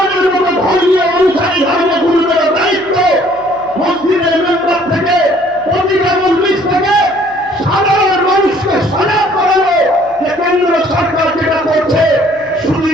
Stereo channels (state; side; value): noise; left; hum, 28 dB below the sound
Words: মতো ধর্মীয় অনুসারী ধর্মগুরুদের দায়িত্ব মসজিদের মেম্বার থেকে, প্রতিটা মজলিস থেকে সাধারণ মানুষকে সজাগ করানো যে কেন্দ্র সরকার যেটা করছে শুধু